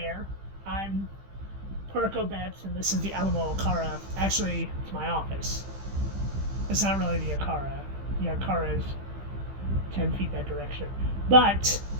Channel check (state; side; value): late; left; 15 ms